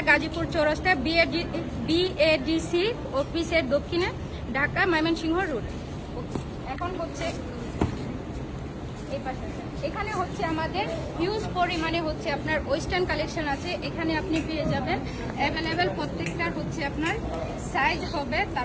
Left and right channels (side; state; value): both; identical; correlation 1.00